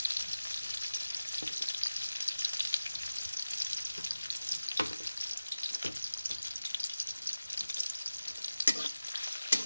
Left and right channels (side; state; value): both; inverted; correlation -0.95